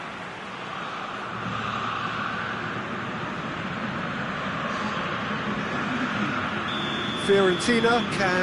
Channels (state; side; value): identical; both; correlation 1.00